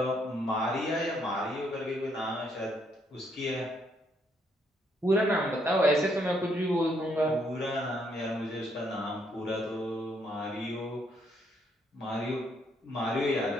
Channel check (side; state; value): both; normal; correlation 0.72